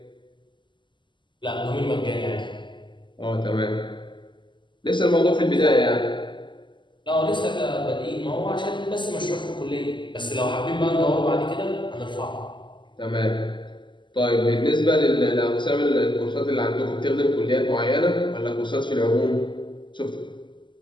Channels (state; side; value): late; right; 0.23 ms